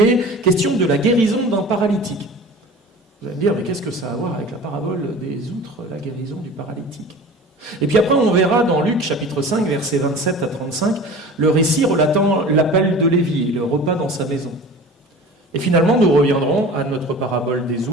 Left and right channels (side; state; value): both; normal; correlation 0.39